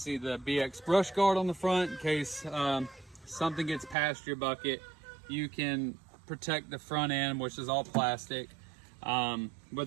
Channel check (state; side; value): drops out; left; at 4.0 s